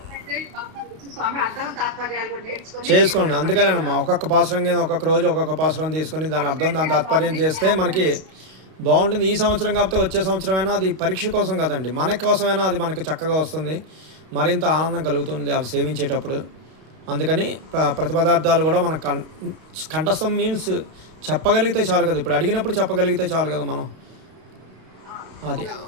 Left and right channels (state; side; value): late; left; 32 ms